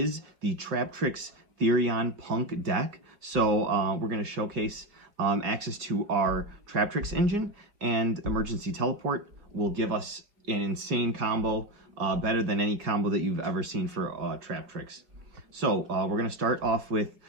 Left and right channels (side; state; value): left; late; 5.2 ms